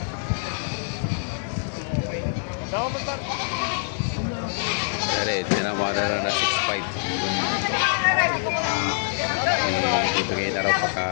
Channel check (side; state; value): right; silent; 62 dB below the other